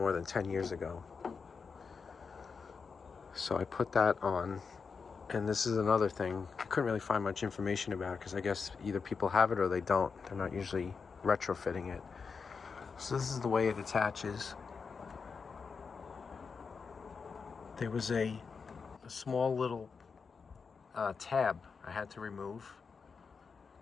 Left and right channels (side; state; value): right; quieter; 5.3 dB